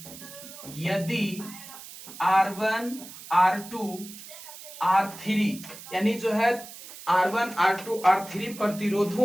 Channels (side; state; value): right; noise; hiss, 15 dB below the sound